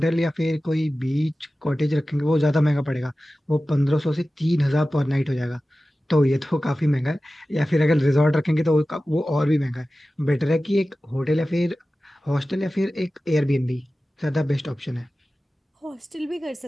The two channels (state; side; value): normal; both; correlation 0.95